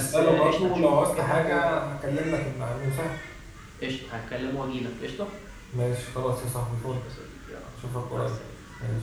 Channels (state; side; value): identical; both; correlation 1.00